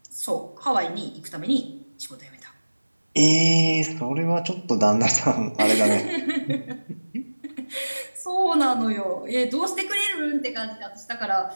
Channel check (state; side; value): inverted; both; correlation -1.00